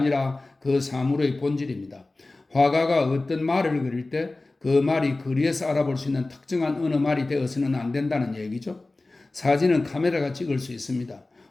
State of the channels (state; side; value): quieter; right; 3.1 dB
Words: 그 사물의 본질입니다. 화가가 어떤 말을 그릴 때 그 말이 거리에서 알아볼 수 있는 특정한 어느 말이 되어서는 안 된다는 얘기죠. 사진은 카메라가 찍을 수 있습니다.